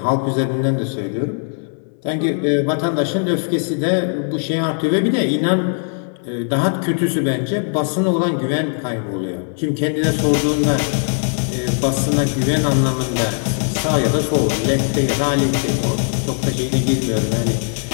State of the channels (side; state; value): right; silent; 57 dB below the other